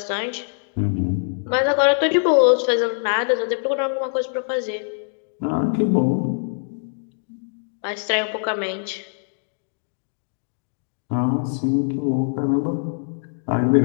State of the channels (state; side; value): silent; right; digital silence